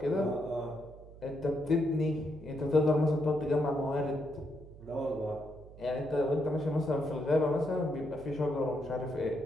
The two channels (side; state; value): right; noise; hum, 18 dB below the sound